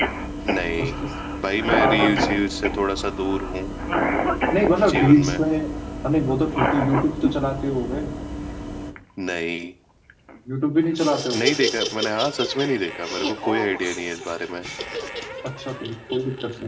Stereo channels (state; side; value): identical; both; correlation 1.00